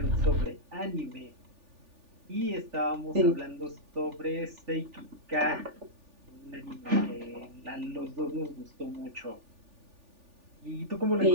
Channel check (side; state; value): left; late; 3.4 ms